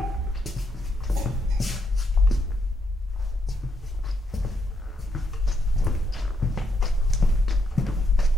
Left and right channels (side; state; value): both; normal; correlation 0.77